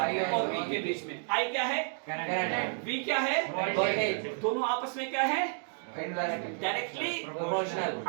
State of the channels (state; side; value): silent; left; 57 dB below the other